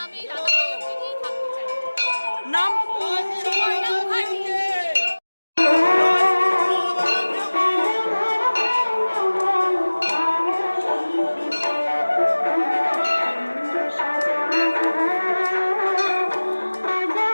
আমি এই রাধাবল্লভকে নিয়েই থাকতে চাই। নাম? Suborna Mukherjee.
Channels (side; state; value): both; inverted; correlation -1.00